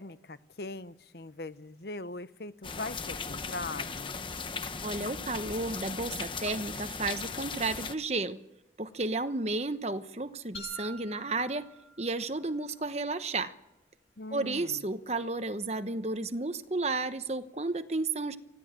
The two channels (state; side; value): normal; both; correlation 0.23